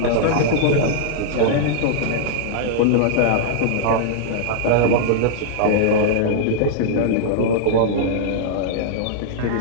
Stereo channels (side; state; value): both; different; correlation -0.01